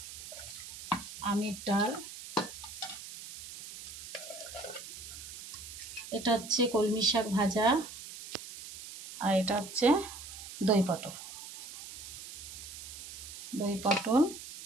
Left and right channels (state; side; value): noise; right; hiss, 12 dB below the sound